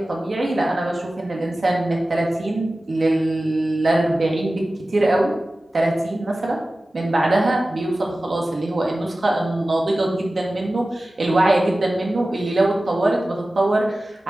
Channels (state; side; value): normal; both; correlation 0.96